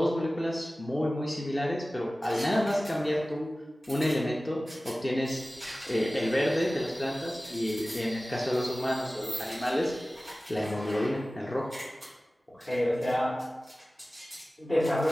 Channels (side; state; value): both; normal; correlation 0.97